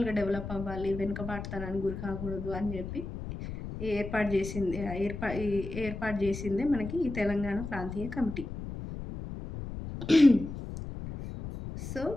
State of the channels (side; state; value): left; noise; rumble, 8 dB below the sound